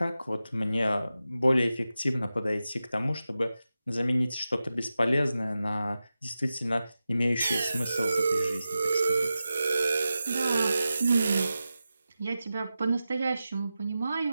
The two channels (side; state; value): both; inverted; correlation -0.93